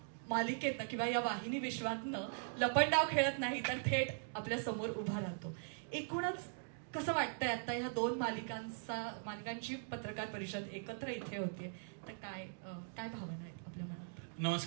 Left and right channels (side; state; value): left; silent; digital silence